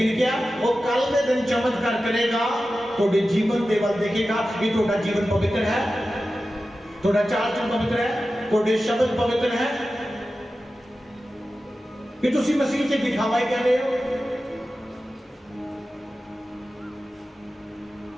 क्या वो कल के दिन चमत्कार करेगा, थोड़े जीवन के वल देखेगा कि थोड़ा जीवन पवित्र है, थोड़ा चाल चलन पवित्र है, थोड़े शब्द पवित्र है, कि तुसी मसीह से दिखावा ही कर रहे हो।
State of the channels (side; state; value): both; normal; correlation 0.94